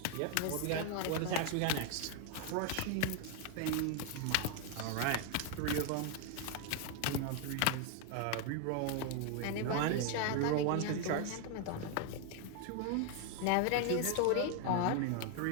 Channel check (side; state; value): both; different; correlation 0.01